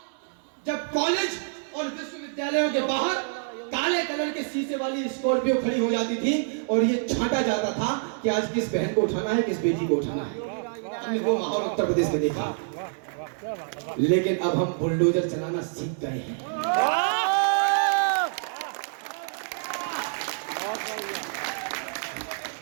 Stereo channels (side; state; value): left; silent; digital silence